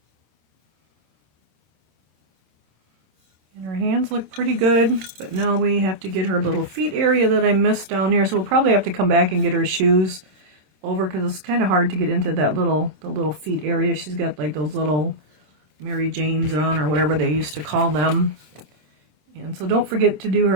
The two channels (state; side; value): late; left; 27 ms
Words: And her hands look pretty good, but now we have to get her little feet area that I missed down here. So we'll probably have to come back and get her shoes over because it's kind of hard to get into that the little feet area. She's got like those little Mary Janes on, or whatever they used to call them. And so don't forget to do